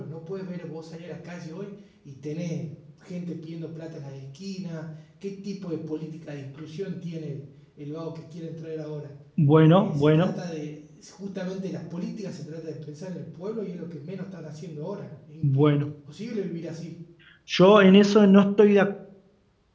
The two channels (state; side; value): identical; both; correlation 1.00